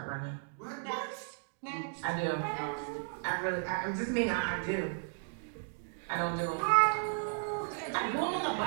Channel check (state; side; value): silent; left; digital silence